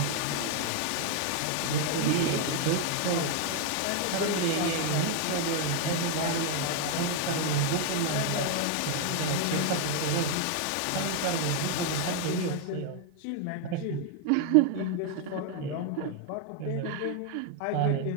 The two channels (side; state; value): both; different; correlation 0.00